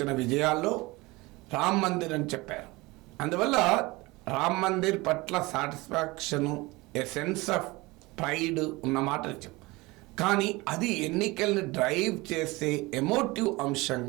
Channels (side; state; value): left; quieter; 22.5 dB